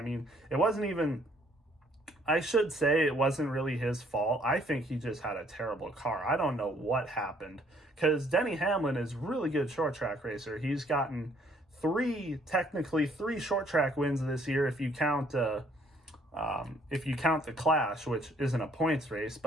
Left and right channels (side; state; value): both; normal; correlation 0.64